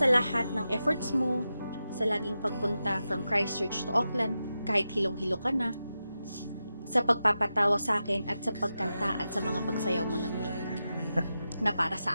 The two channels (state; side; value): inverted; both; correlation -0.90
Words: lahat ng efforts mo, sa laging pagpunta from Christchurch to Auckland, kahit hilong-hilo ka na, sa pagpapatawa sa akin at sa pagkanta at sa mga pagsayaw mo ng guitar, na para sa